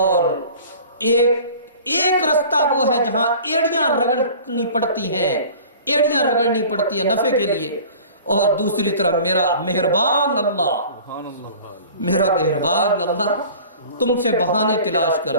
ایک رستہ وہ ہے جہاں ایڑیاں رگڑنی پڑتی ہیں، ایڑیاں رگڑنی پڑتی ہیں نفع کے لیے، اور دوسری طرف میرا مہربان اللہ، میرا مہربان اللہ تم سے بہانے تلاش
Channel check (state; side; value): inverted; both; correlation -0.44